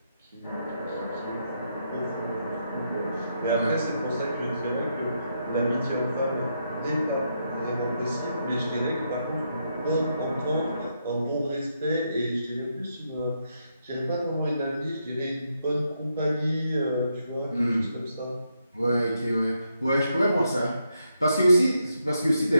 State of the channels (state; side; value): inverted; both; correlation -0.80